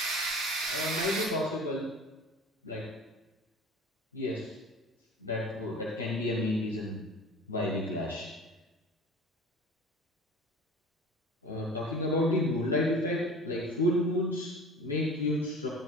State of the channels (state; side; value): normal; both; correlation 0.40